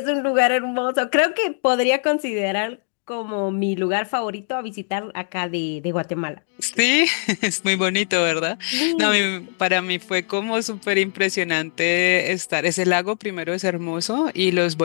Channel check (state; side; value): silent; right; digital silence